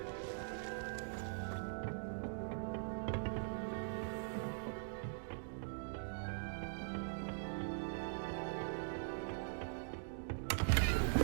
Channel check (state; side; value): silent; left; digital silence